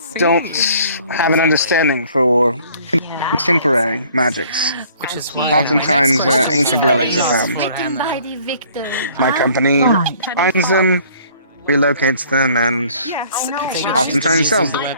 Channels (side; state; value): both; inverted; correlation -0.56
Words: don't have an understanding for contemporary magics. Oftentimes, ancient relics are found. My company finds them, relocates them, and oftentimes sells them.